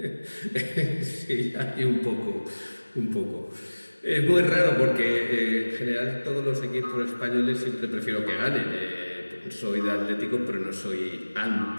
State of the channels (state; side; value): inverted; both; correlation -1.00